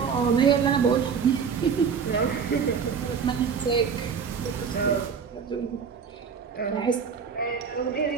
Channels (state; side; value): quieter; left; 6.3 dB